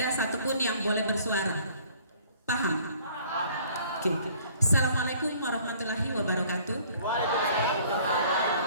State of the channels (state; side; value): inverted; both; correlation -0.56